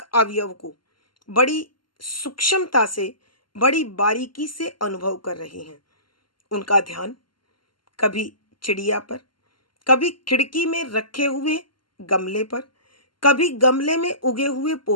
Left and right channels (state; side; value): late; right; 0.72 ms